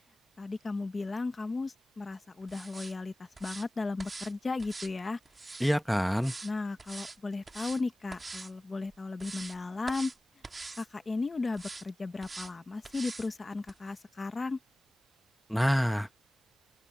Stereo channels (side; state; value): both; normal; correlation 0.98